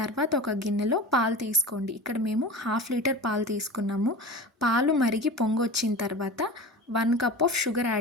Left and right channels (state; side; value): normal; both; correlation 0.32